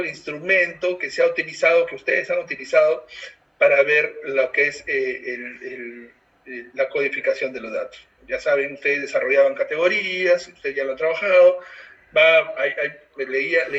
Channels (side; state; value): both; identical; correlation 1.00